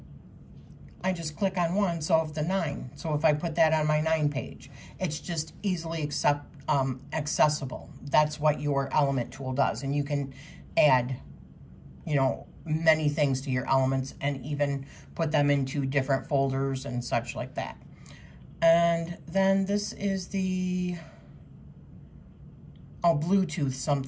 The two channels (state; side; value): identical; both; correlation 1.00